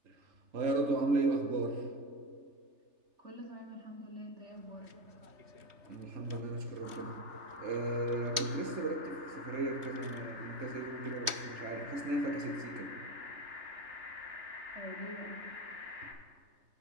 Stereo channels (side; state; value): left; late; 3.2 ms